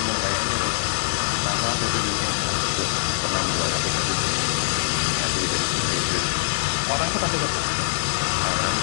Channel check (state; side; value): silent; right; digital silence